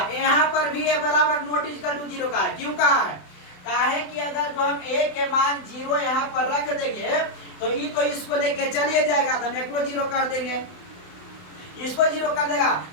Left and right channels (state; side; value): late; right; 28 ms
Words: यहाँ पर भी a बराबर नॉट इक्वल टू 0 का है, क्यों कहा है, काहे कि अगर जो हम a के मान 0 यहाँ पर रख देंगे तो ये तो इसको लेके चलिए जाएगा, तो हम एकरो 0 कर देंगे, इसको 0 कर देगा,